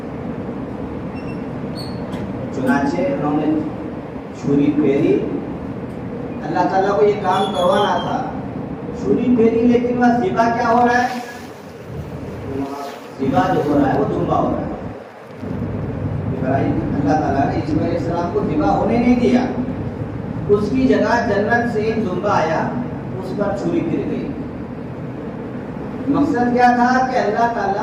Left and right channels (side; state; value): both; identical; correlation 1.00